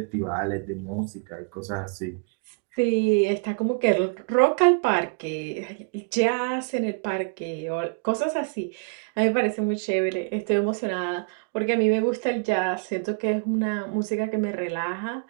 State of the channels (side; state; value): left; quieter; 34.3 dB